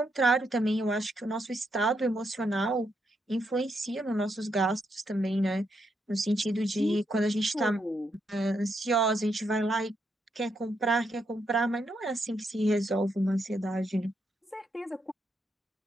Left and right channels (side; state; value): both; normal; correlation 0.79